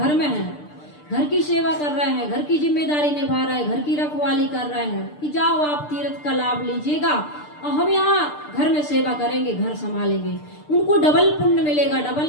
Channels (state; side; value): late; right; 6.7 ms